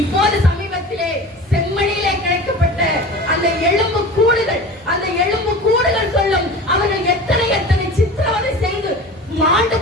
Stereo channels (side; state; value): both; normal; correlation 0.35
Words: சமீபத்திலே செம்மணியிலே கிடைக்கப்பட்ட அந்த எலும்பு கூடுகள் சொல்லும் அவர்கள் எத்தனை சித்திரவதை செய்து மாண்டு